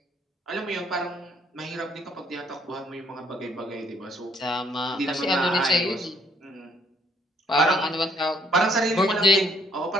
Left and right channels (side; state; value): both; normal; correlation 0.66